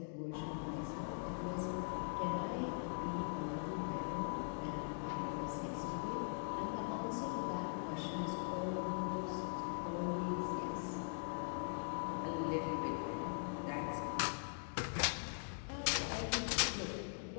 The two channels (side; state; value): right; silent; digital silence